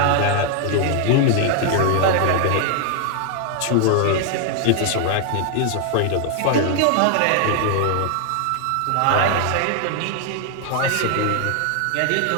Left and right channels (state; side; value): different; both; correlation 0.00